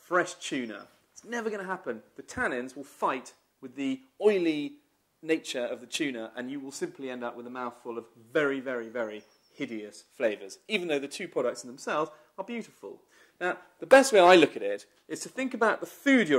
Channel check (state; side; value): identical; both; correlation 1.00